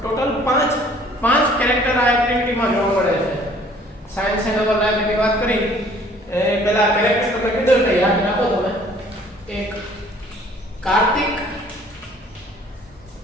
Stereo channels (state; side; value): normal; both; correlation 0.55